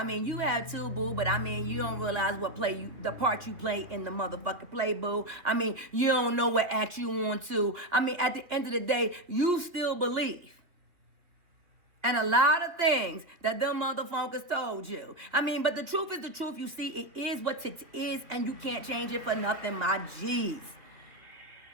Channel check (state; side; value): late; left; 3.1 ms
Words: mean, you have too, boo, but I mean, you don't realize the part you play in the motherfucking play, boo. I mean, you don't know what act you want to. I mean, at the end of the day, you still believe. And a lot of things that them motherfuckers told you. I mean, but the truth is the truth. You see, it is what it is, and you can't change it for nothing, my G's.